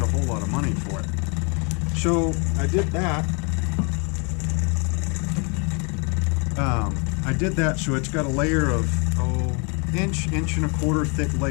a whole lot of money for it. So I did that. So it's got a layer of inch and a quarter thick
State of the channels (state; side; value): quieter; right; 34.0 dB